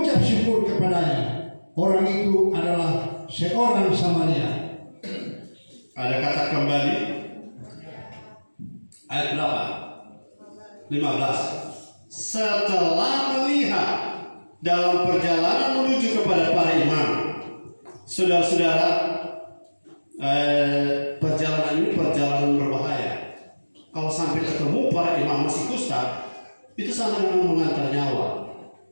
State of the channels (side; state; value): both; inverted; correlation -1.00